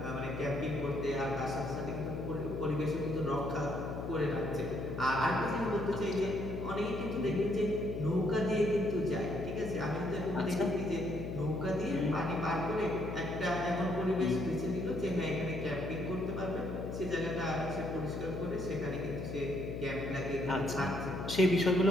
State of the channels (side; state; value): left; noise; hum, 5 dB below the sound